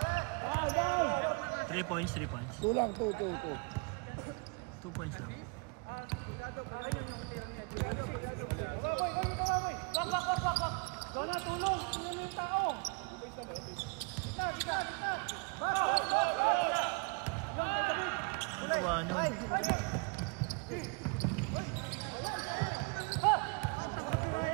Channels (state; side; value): quieter; left; 32.9 dB